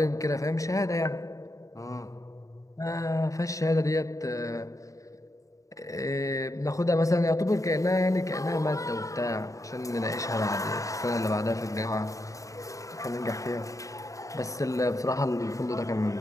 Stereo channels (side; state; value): right; late; 0.16 ms